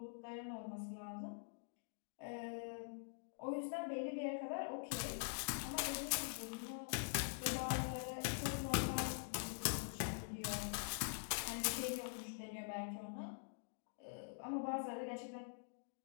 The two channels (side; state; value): right; silent; digital silence